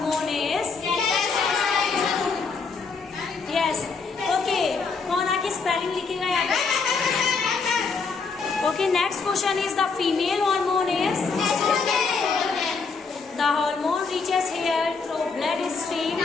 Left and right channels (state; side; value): quieter; right; 4.8 dB